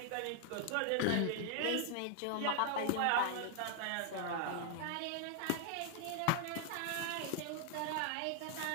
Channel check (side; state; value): both; different; correlation 0.00